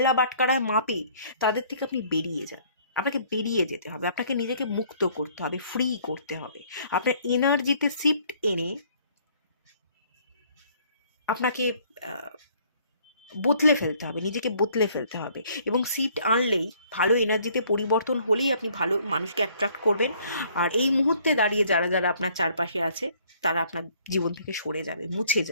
বাটকারায় মাপে, তাদের থেকে আপনি বেরিয়ে যান। আপনাকে বেরিয়ে যেতে হবে, আপনাকে নিজেকে মুক্ত করতে হবে, ফ্রি করতে হবে। আপনার এনার্জিতে শিফট এনে আপনাকে বদলে ফেলতে হবে, নিজেকে বদলে ফেলতে হবে। এবং শিফট আনলেই, ভালো এনার্জিতে পরিবর্তন হলেই আপনি ভালো মানুষকে অ্যাট্রাক্ট করবেন। আর এই মুহূর্তে দাঁড়িয়ে যারা যারা আপনার চারপাশে আছে, তারা আপনার জীবন থেকে সরে যাবে, মুছে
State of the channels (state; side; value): inverted; both; correlation -0.60